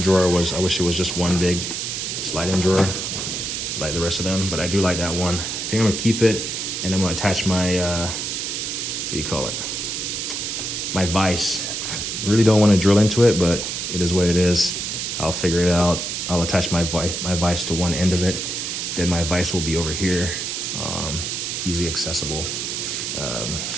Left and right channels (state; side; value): noise; right; hiss, 3 dB below the sound